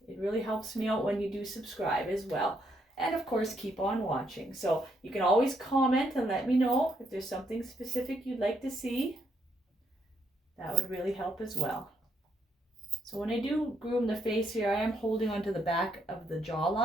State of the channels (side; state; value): both; normal; correlation 0.74